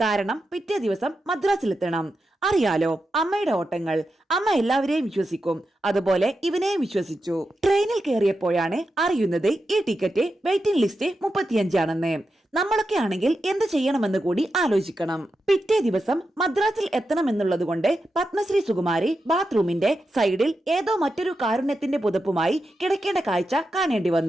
കാരണം പിറ്റേ ദിവസം മദ്രാസിലെത്തണം. അറിയാലോ അമ്മയുടെ ഓട്ടങ്ങൾ. അമ്മ എല്ലാവരെയും വിശ്വസിക്കും. അതുപോലെ ഇവനെയും വിശ്വസിച്ചു. ട്രെയിനിൽ കയറിയപ്പോഴാണ് അറിയുന്നത് ഈ ടിക്കറ്റ് വെയിറ്റിംഗ് ലിസ്റ്റ് 35 ആണെന്ന്. നമ്മളൊക്കെ ആണെങ്കിൽ എന്ത് ചെയ്യണമെന്ന് കൂടി ആലോചിക്കണം. പിറ്റേ ദിവസം മദ്രാസിൽ എത്തണമെന്നുള്ളത് കൊണ്ട് പത്മശ്രീ സുകുമാരി ബാത്റൂമിന്റെ സൈഡിൽ ഏതോ മറ്റൊരു കാരുണ്യത്തിന്റെ പുതപ്പുമായി കിടക്കേണ്ട കാഴ്ച കാണേണ്ടി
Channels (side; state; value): both; normal; correlation 0.88